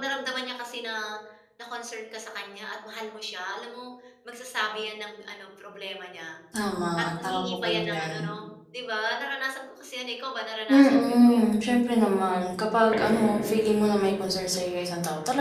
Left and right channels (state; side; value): identical; both; correlation 1.00